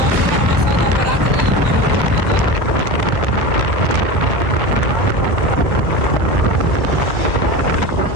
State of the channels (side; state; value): left; late; 1.4 ms